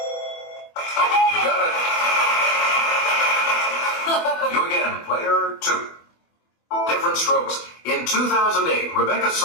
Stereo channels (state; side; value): late; right; 24 ms